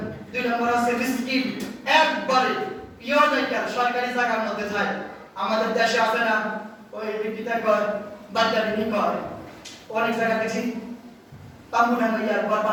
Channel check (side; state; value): both; identical; correlation 1.00